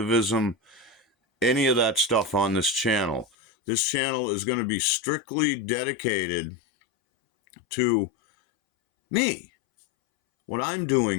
any of that stuff on this channel. This channel is going to be strictly dedicated to me, what I'm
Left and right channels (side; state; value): right; drops out; at 3.2 s